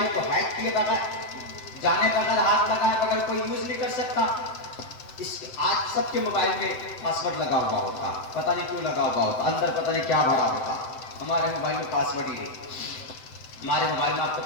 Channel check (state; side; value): late; right; 7.9 ms